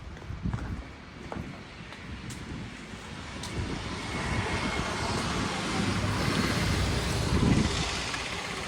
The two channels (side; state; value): both; identical; correlation 1.00